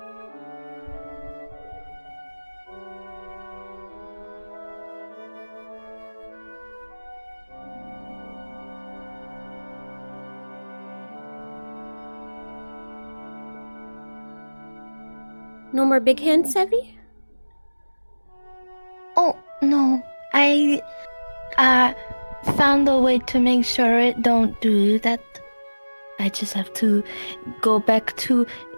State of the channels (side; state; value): both; inverted; correlation -1.00